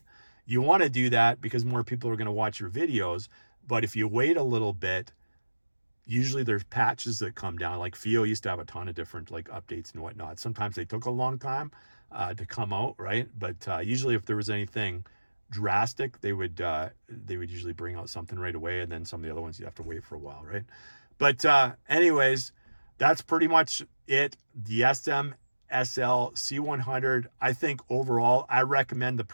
You want to do that because more people are going to watch your videos, but if you wait a little bit, usually there's patches that come down. Like FiiO used to have a ton of different like updates and whatnot. Sometimes they took a long time to come out, right? But usually if there was anything drastic, they would usually bring out something right away, and then some of the other ones you have to wait for a while, right? But anyways, that's pretty much it. The SMSL C100, I think overall I recommend the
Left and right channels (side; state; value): both; inverted; correlation -1.00